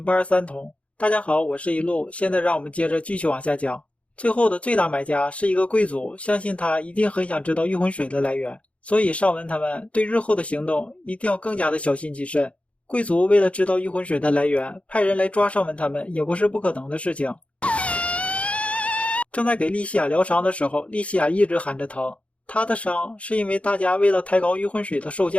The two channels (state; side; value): late; right; 0.062 ms